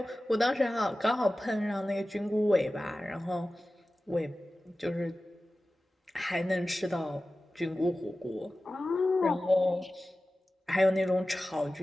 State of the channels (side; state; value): both; normal; correlation 0.95